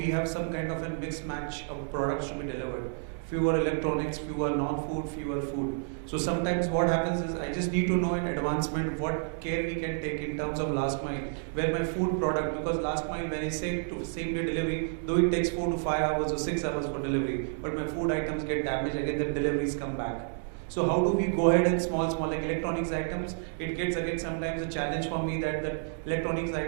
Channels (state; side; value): silent; left; digital silence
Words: have some kind of a mixed match of products to be delivered. Fewer electronics, fewer non-food, fewer food. So sometimes what happens is I just need to know in advancement what care we can take in terms of last mile, where my food product, because last mile when I say to same day delivery, though it takes 4 to 5 hours or 6 hours for delivery, but my food items get damaged, again the deliveries come back. So how do we go ahead and small like electronics items, it gets again sometimes a challenge for me that the electronics